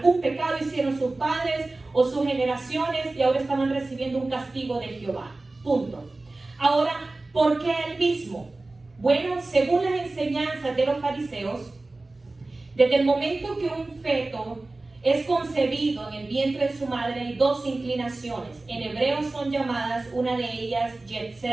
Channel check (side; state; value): left; quieter; 3.1 dB